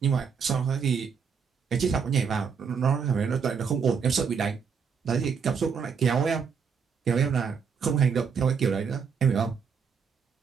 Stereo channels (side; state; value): left; quieter; 6.2 dB